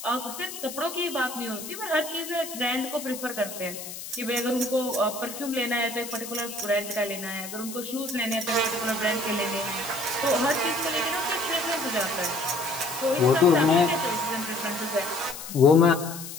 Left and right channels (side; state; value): left; noise; hiss, 10 dB below the sound